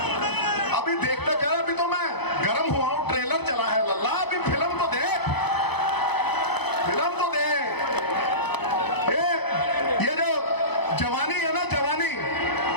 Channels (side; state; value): right; late; 0.98 ms